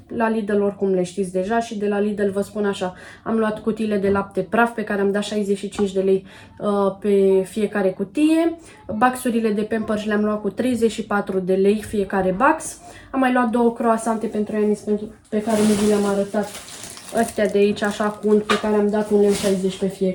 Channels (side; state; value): both; identical; correlation 1.00